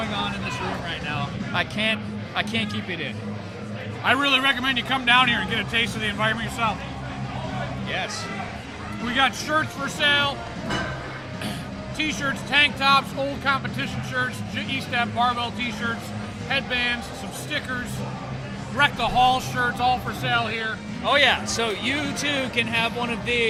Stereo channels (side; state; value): both; identical; correlation 1.00